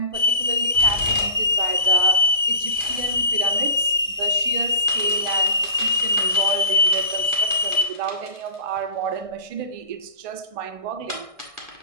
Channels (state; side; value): late; left; 1.6 ms